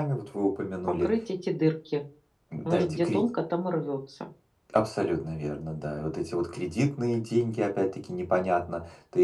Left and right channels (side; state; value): both; identical; correlation 1.00